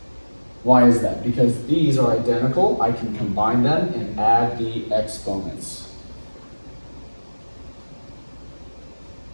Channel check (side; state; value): both; inverted; correlation -1.00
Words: Why is that? Because these are identical. I can combine them and add the exponents.